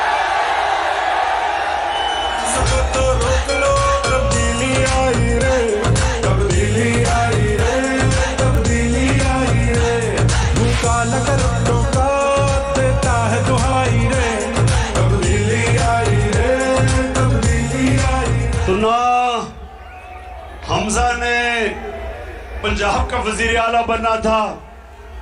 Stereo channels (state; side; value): identical; both; correlation 1.00